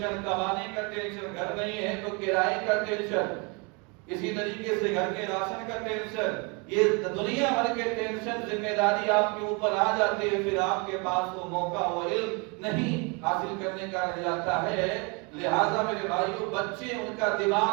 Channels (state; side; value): quieter; left; 30.9 dB